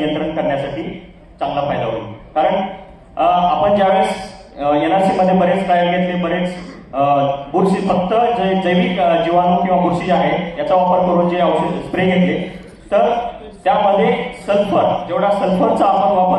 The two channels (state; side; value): identical; both; correlation 1.00